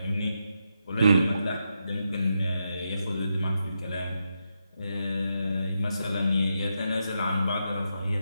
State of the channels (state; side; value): inverted; both; correlation -0.84